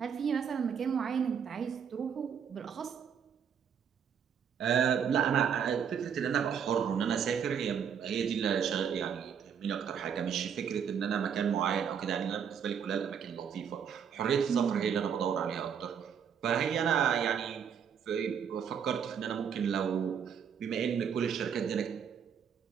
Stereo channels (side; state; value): left; quieter; 7.6 dB